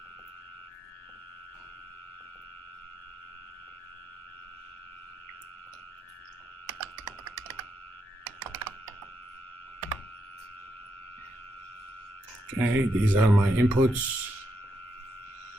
Okay, these are my inputs.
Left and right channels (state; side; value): normal; both; correlation 0.81